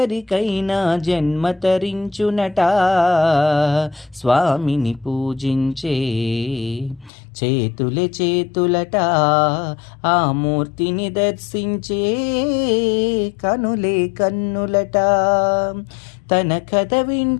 జన్మ తరించునట. స్వామిని పూజించే చేతులే చేతులట, ఆ మూర్తిని దర్శించే కనులే కన్నులట. తన కథ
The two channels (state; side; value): drops out; right; at 7.1 s